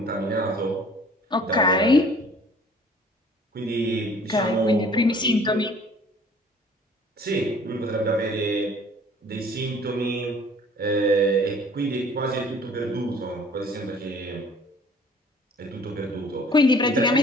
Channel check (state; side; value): normal; both; correlation 0.53